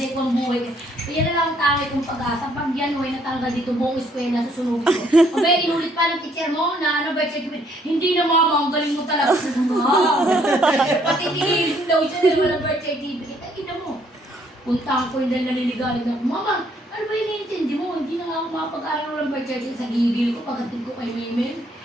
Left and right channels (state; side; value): normal; both; correlation 0.67